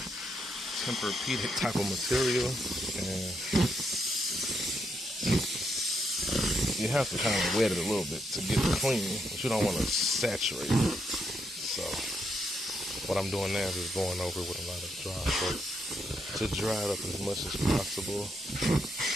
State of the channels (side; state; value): both; normal; correlation 0.78